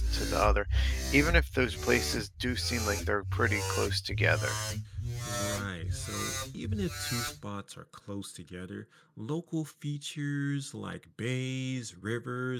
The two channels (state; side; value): identical; both; correlation 1.00